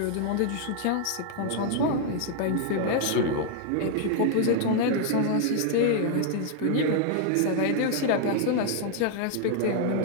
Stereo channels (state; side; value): different; both; correlation 0.00